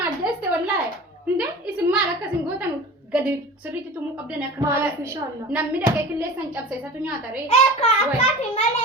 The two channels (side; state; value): both; normal; correlation 0.36